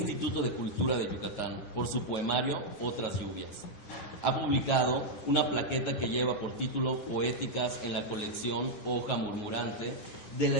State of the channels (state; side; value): late; right; 9.7 ms